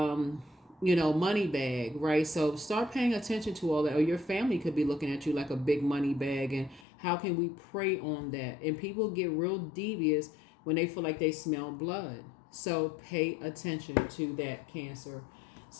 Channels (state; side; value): drops out; right; at 6.9 s